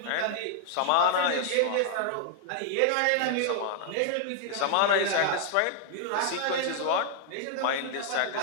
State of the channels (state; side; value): different; both; correlation 0.00